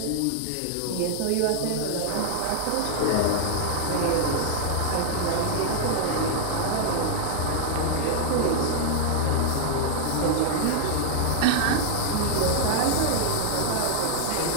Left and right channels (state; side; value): different; both; correlation -0.01